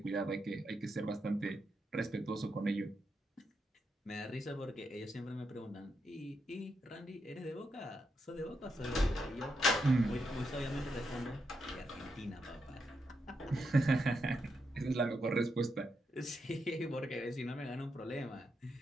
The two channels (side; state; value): both; normal; correlation 0.83